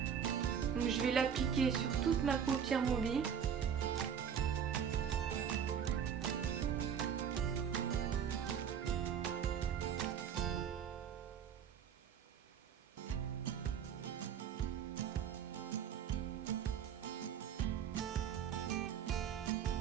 Donc je vais l'appliquer sur toute ma paupière mobile.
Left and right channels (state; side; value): quieter; left; 8.0 dB